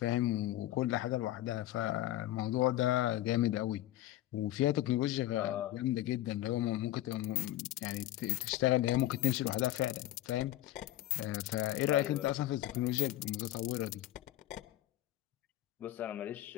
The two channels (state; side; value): quieter; right; 14.6 dB